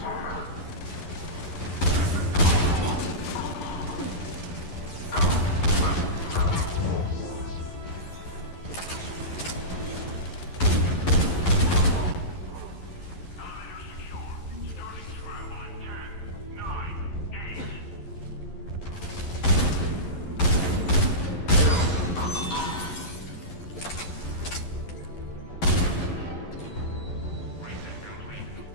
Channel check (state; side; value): late; right; 11 ms